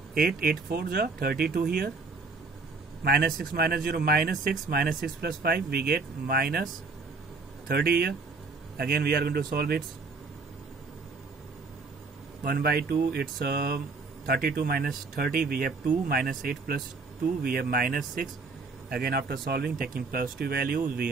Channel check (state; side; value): quieter; left; 4.1 dB